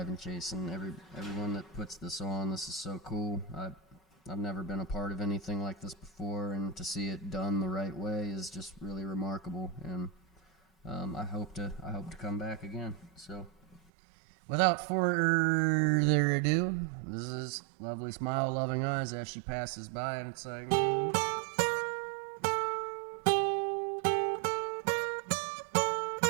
and Jason, everyone that puts this on. This is so cool. I've never been a part of anything like this before, and to see it done the right way is just really remarkable. And I hope to come back again. So, without further ado, this is Lovely Smile, Loving Eyes as She Passes By, and it's like.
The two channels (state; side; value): drops out; left; at 13.8 s